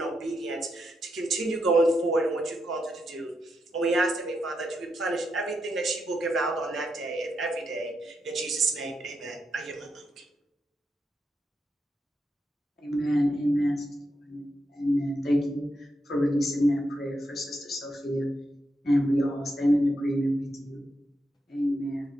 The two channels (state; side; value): normal; both; correlation 0.83